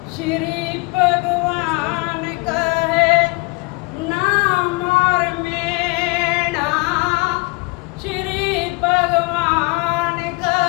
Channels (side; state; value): right; quieter; 28.1 dB